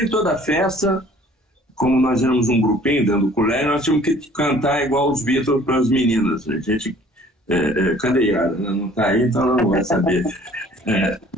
em toda a festa, como nós éramos um grupinho dentro do colégio, nós tínhamos que cantar igual os Beatles para as meninas. A gente, cadê Yara? Não está aí, então ela não vai saber.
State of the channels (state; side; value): normal; both; correlation 0.53